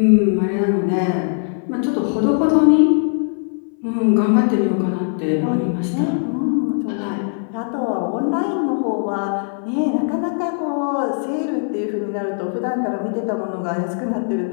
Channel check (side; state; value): right; silent; 60 dB below the other